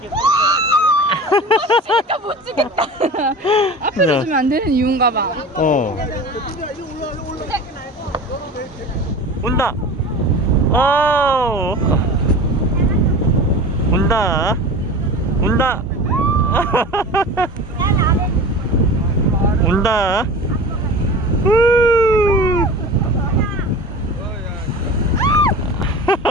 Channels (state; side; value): normal; both; correlation 0.35